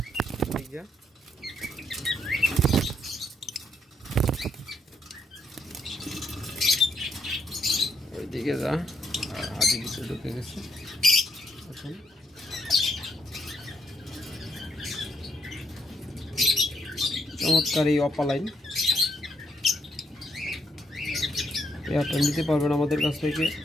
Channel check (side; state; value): both; normal; correlation 0.75